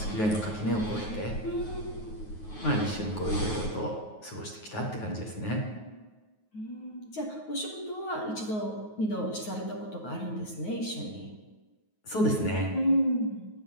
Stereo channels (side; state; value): right; late; 9.4 ms